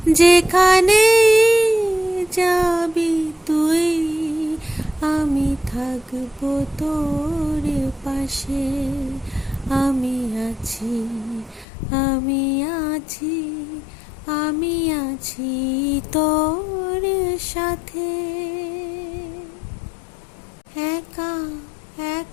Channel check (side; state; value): right; drops out; at 11.7 s